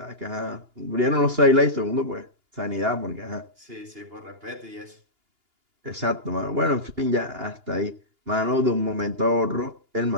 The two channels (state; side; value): late; left; 2.8 ms